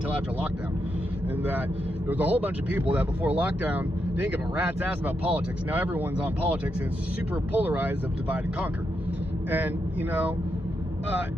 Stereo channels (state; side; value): normal; both; correlation 0.83